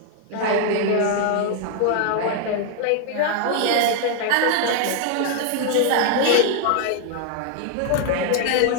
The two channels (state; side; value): different; both; correlation 0.00